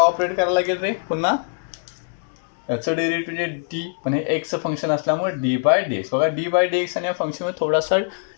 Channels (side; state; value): right; silent; digital silence